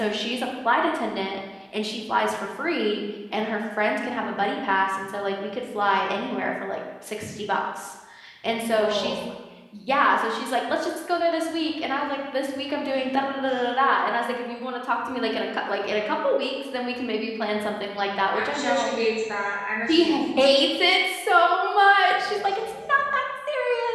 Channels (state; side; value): identical; both; correlation 1.00